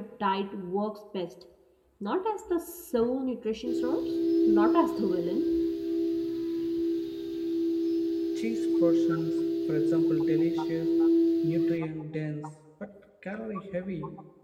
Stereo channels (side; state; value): both; identical; correlation 1.00